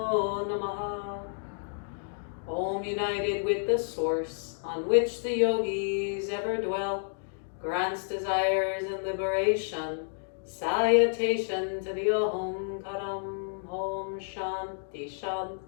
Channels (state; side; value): silent; right; digital silence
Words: Namaha. Om united with the source on which the yogis ever dwell, grants desires and liberation. Salutation to the Om Karam. Om Shanti